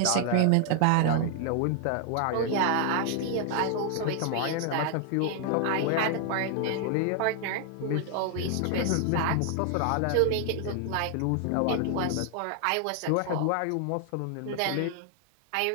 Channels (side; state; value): both; different; correlation 0.00